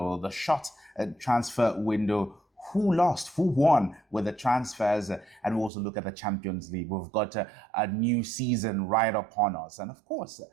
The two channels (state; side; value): drops out; left; at 5.7 s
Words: the short transfer window. Who lost, who won with the transfers, and we'll also look at the Champions League. We've got a new season right upon us. And of course,